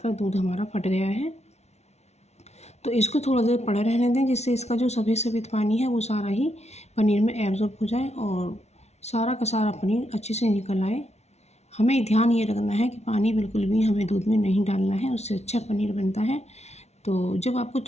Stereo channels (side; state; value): right; late; 0.31 ms